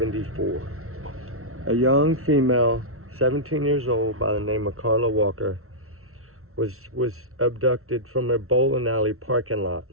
A young female, 17 years old, by the name of Carla Walker, was abducted from a bowling alley parking lot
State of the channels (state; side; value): late; left; 0.63 ms